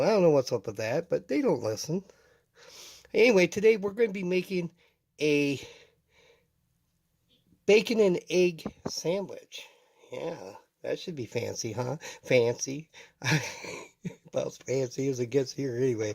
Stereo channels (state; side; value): identical; both; correlation 1.00